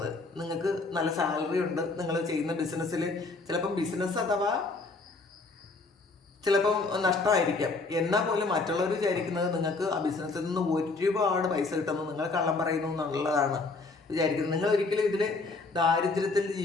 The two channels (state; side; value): quieter; right; 3.7 dB